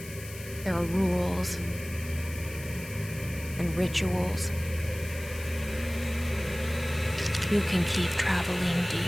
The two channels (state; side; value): noise; left; hiss, 15 dB below the sound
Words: There are rules and rituals. You can keep traveling